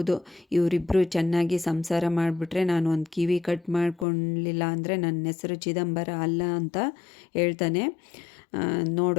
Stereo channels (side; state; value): right; drops out; at 4.0 s